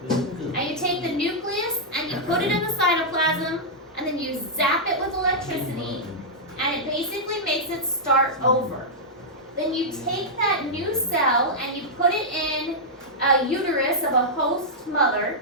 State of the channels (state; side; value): normal; both; correlation -0.07